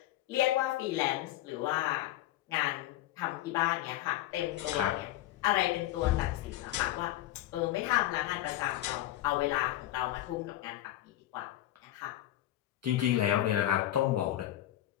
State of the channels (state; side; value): quieter; right; 14.2 dB